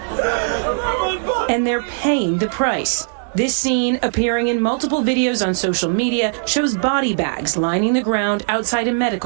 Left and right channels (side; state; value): left; silent; digital silence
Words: And they're paying the price. This scene, appearing in multiple videos on social media, shows body bags lining the ground outside a